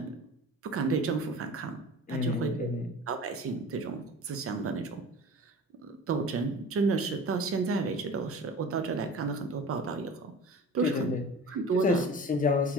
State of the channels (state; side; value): normal; both; correlation 0.39